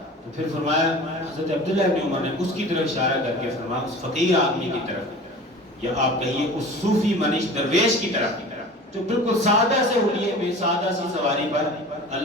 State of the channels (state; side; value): normal; both; correlation 0.39